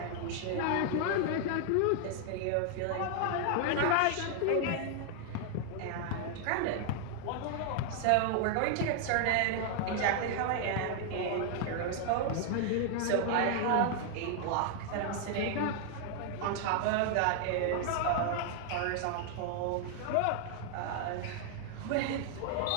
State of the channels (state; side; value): different; both; correlation 0.00